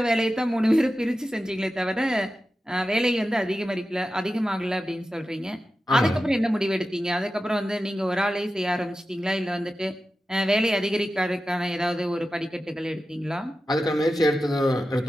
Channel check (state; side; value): normal; both; correlation 0.93